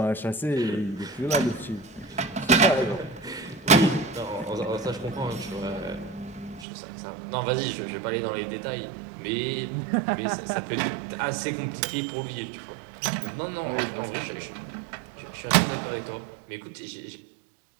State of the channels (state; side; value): drops out; left; at 6.7 s